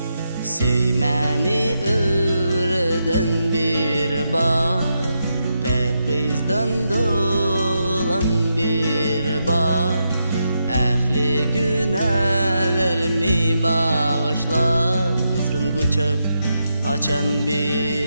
Söymeni öğreden bir bar, pek kızdan dolan bir bar. Ehli günahlarımı bağışla, kızgın kucak açan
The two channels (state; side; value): inverted; both; correlation -0.84